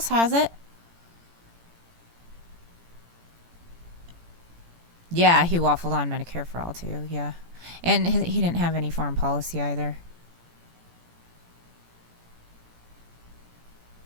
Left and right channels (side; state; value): left; late; 17 ms